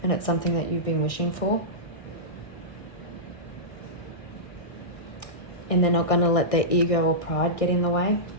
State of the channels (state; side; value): late; right; 1.6 ms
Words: and it's something that you've been wishing for. And they're not going to let their ego or pride get in the way.